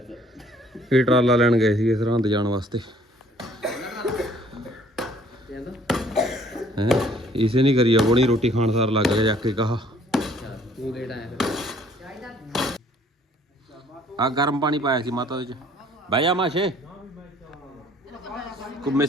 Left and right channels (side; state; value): both; normal; correlation 0.58